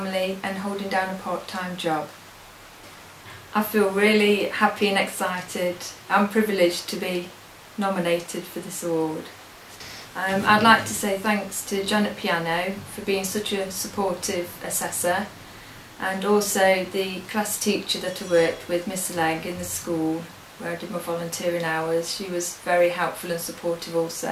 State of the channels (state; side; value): identical; both; correlation 1.00